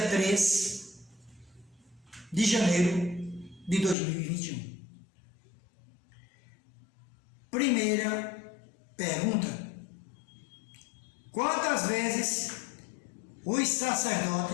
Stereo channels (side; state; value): right; drops out; at 4.0 s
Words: 3 de janeiro de 2021. Primeira pergunta: quantas vezes os